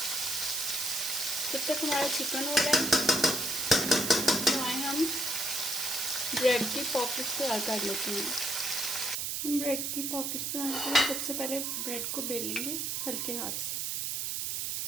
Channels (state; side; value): noise; right; hiss, 1 dB below the sound